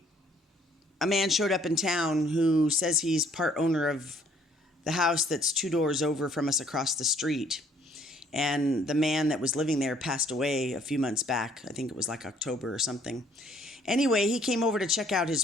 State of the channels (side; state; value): both; normal; correlation 0.62